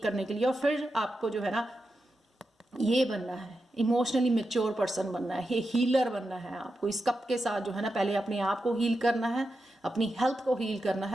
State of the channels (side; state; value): both; normal; correlation 0.89